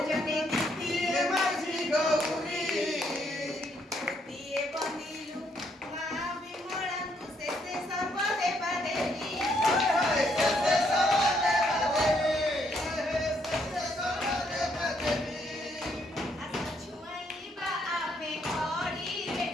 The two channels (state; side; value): normal; both; correlation 0.72